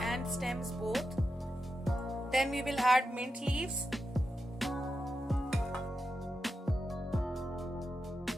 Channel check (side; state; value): both; normal; correlation 0.88